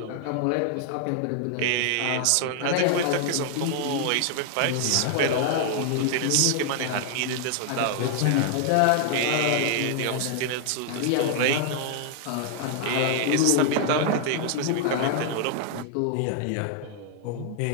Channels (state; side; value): different; both; correlation 0.00